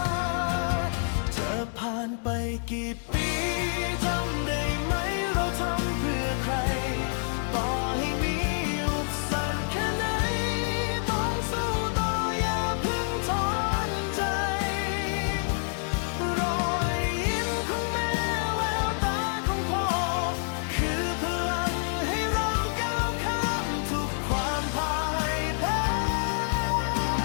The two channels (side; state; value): right; silent; 60 dB below the other